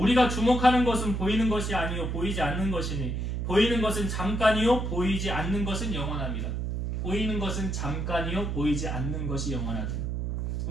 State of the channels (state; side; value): noise; right; hum, 2 dB below the sound